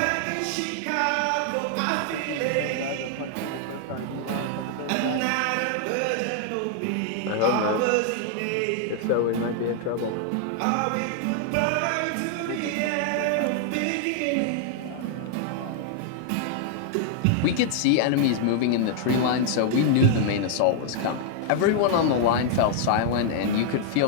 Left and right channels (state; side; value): different; both; correlation -0.01